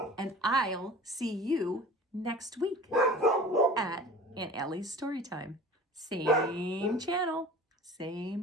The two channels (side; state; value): both; normal; correlation 0.41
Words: and I'll see you next week at Aunt Ellie's Storytime. Same channel,